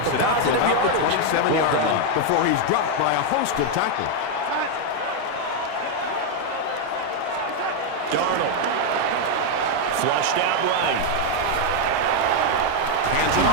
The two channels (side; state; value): both; different; correlation 0.01